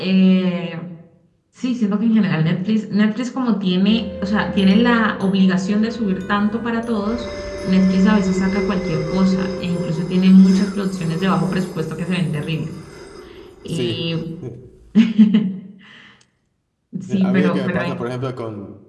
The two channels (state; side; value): identical; both; correlation 1.00